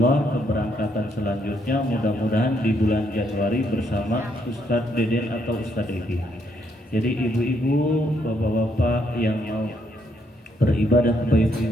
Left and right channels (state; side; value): normal; both; correlation 0.73